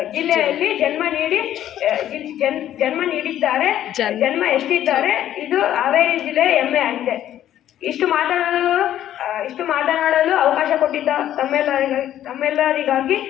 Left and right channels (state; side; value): quieter; right; 11.8 dB